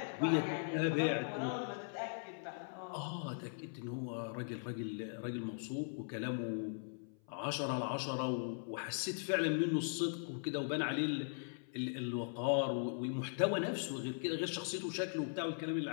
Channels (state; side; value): silent; right; 51 dB below the other